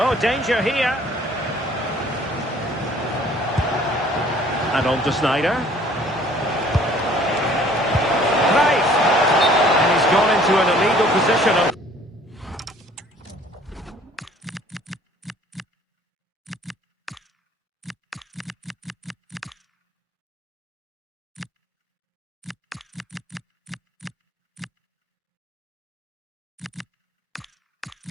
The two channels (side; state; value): both; normal; correlation 0.55